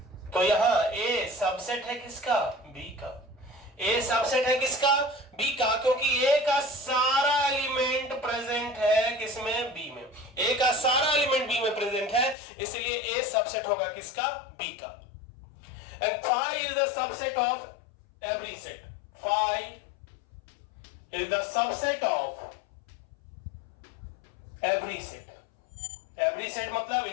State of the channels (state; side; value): drops out; right; at 12.4 s